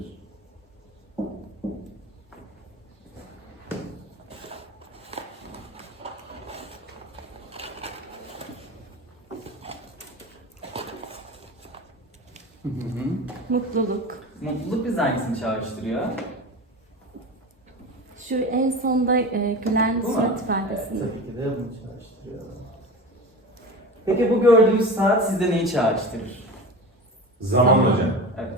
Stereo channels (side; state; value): both; normal; correlation 0.30